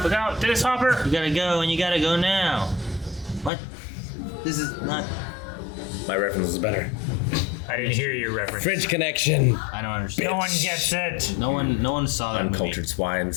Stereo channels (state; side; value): drops out; right; at 3.5 s